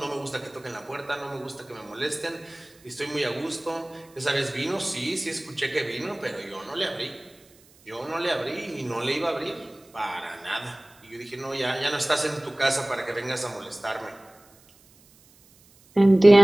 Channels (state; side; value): noise; right; hiss, 28 dB below the sound